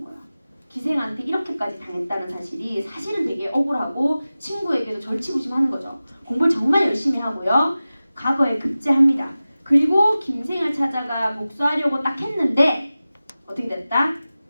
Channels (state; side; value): inverted; both; correlation -0.96